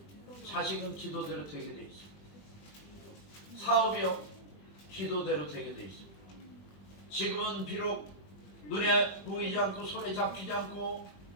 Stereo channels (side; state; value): right; late; 20 ms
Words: 자식은 기도대로 되게 돼 있습니다. 사업이요. 기도대로 되게 돼 있습니다. 지금은 비록 눈에 보이지 않고 손에 잡히지 않고